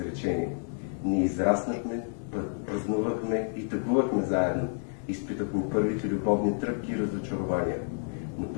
Ние израснахме, празнувахме и тъгувахме заедно. Изпитахме първите любовни тръпки и разочарования. Но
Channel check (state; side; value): silent; right; 58 dB below the other